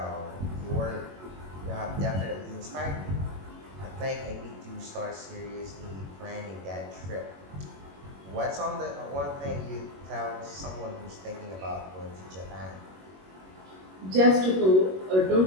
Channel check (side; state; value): left; late; 21 ms